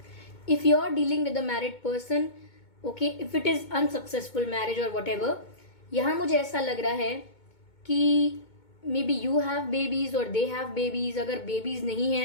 if you are dealing with a married person, okay, if it is unsuccessful marriage or whatever, यहाँ मुझे ऐसा लग रहा है कि may be you have babies और दे हैव बेबीज। अगर बेबीज नहीं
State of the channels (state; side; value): late; right; 2.2 ms